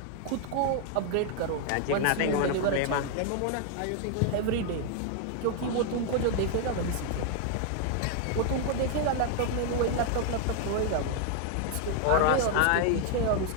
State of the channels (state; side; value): different; both; correlation 0.00